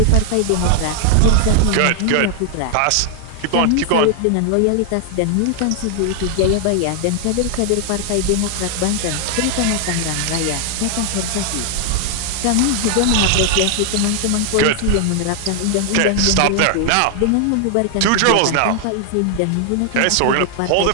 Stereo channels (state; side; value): different; both; correlation 0.00